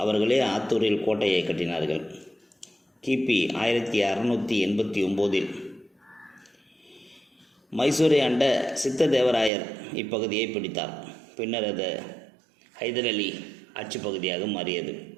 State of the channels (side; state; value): left; drops out; at 9.5 s